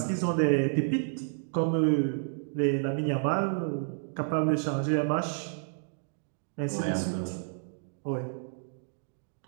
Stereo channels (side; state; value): left; silent; digital silence